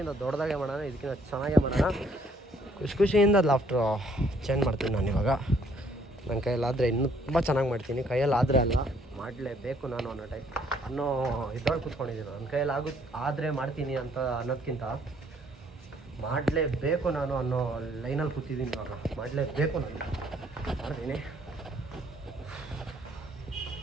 ದೊಡ್ಡದಾಗೆ ಮಾಡೋಣ, ಇದಕ್ಕಿಂತ ಚೆನ್ನಾಗೇ ಮಾಡೋಣ. ಖುಷಿಯಿಂದ ಲಾಫ್ಟ್ರು ಚೇಂಜ್ ಮಾಡ್ತೀನಿ ನಾನು ಇವಾಗ. ನನ್ನ ಕೈಯಲ್ಲಾದರೆ ಇನ್ನೂ ತುಂಬ ಚೆನ್ನಾಗಿ ಮಾಡ್ತೀನಿ, ಕೈಯಲ್ಲಾದರೆ ಅಲ್ಲ ಮಾಡಲೇಬೇಕು ನಾನು ಅನ್ನೋ ಇದ್ರೊಳಗೆ ಕೂತ್ಕೊಂಡಿದ್ದೀನಿ. ನನ್ನ ಕೈಯಲ್ಲಿ ಆದರೆ ಮಾಡ್ತೀನಿ ಅಂತ ಅನ್ನೋದಕ್ಕಿಂತ ಮಾಡಲೇಬೇಕು ನಾನು ಅನ್ನೋ ಲೈನಲ್ಲಿ ಕೂತಿದ್ದೀನಿ ಇವಾಗ. ಮಾಡಲೇಬೇಕು ನಾನು, ಮಾಡ್ತೀನಿ.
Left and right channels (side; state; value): both; normal; correlation 0.64